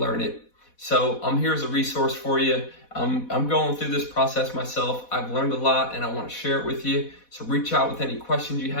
it. So I'm here as a resource for you. I'm going through this process myself. I've learned a lot and I want to share it with you. So reach out with any questions you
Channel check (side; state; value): right; late; 4.1 ms